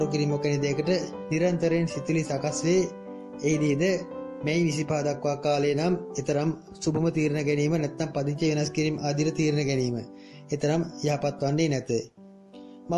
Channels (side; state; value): both; identical; correlation 1.00